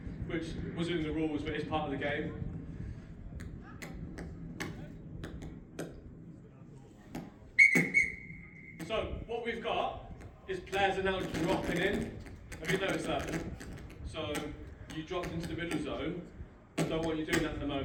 which wasn't in the rules, but it's part of the game. So, what we've got is players are now dropping in. Have you noticed that? So, you dropped into the middle zone. I don't want you doing that at the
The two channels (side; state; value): both; identical; correlation 1.00